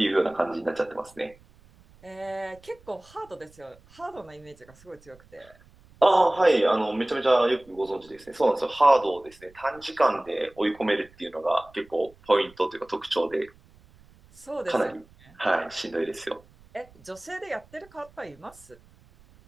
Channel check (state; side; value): noise; right; rumble, 27 dB below the sound